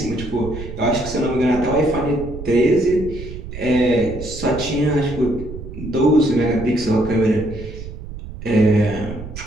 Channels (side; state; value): right; noise; rumble, 11 dB below the sound